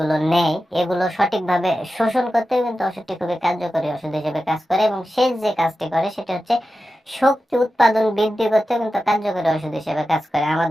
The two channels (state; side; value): normal; both; correlation 0.92